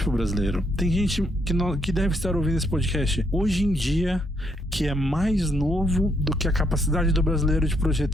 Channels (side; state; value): both; normal; correlation 0.73